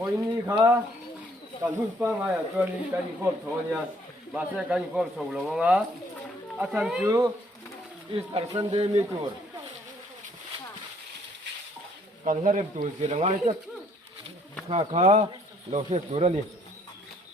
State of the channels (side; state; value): both; normal; correlation 0.64